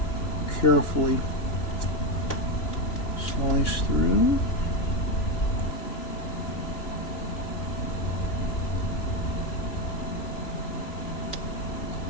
carefully slice through.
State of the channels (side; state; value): right; late; 3.3 ms